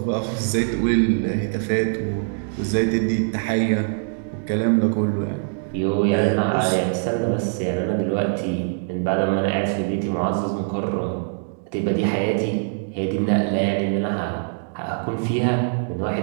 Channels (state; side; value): silent; left; digital silence